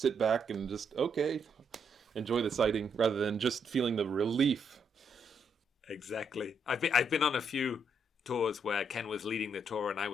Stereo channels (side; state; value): both; normal; correlation 0.75